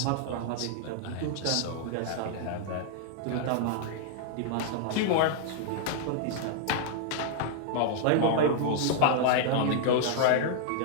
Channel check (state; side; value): different; both; correlation -0.01